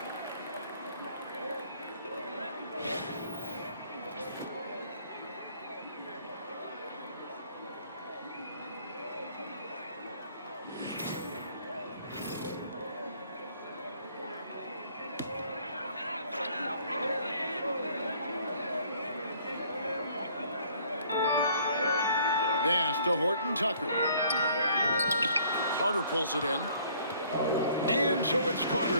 Pass to Horton Tucker. Carter pulls it in. And so it's Carter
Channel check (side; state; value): both; inverted; correlation -0.59